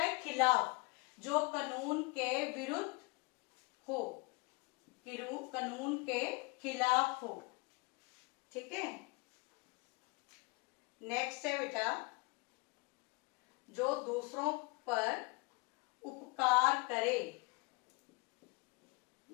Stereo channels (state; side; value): quieter; right; 27.6 dB